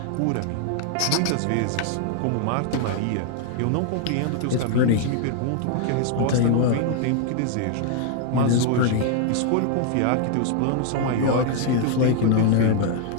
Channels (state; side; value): different; both; correlation 0.00